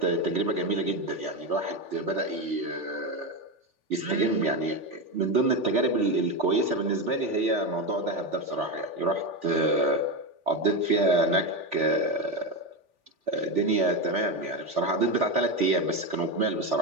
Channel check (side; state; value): left; late; 3.4 ms